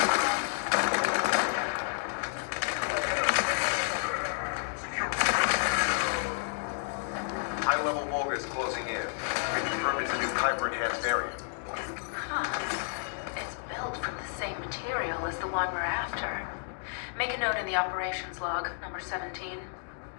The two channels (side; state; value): right; silent; digital silence